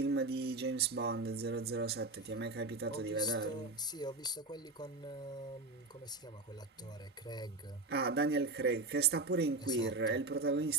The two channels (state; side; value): quieter; left; 3.2 dB